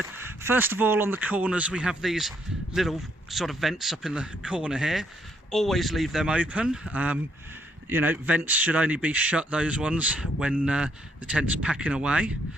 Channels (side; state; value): both; normal; correlation 0.72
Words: First of all, on the corners we have these little sort of vents up in the corner here. Always leave them open. You know, vents should only be shut, those ones, when the tent's packing away.